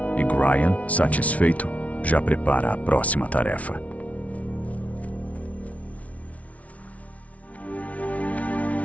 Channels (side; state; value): right; late; 0.067 ms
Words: E Gryan, satisfeito, já prepara a próxima tarefa.